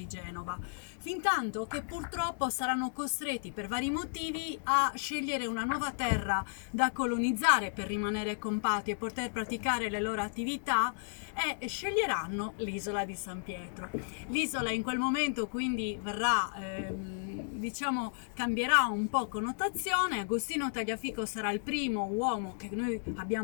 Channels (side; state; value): right; silent; digital silence